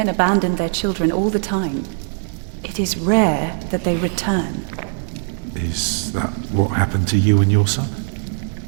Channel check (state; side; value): silent; left; 57 dB below the other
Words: abandon their children all the time. It is rare that they return. Is that what happened to you and your son?